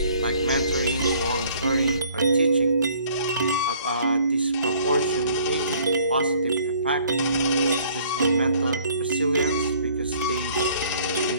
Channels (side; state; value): both; inverted; correlation -0.58